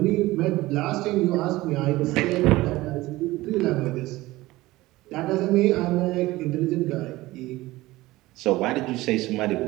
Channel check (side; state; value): left; quieter; 18.6 dB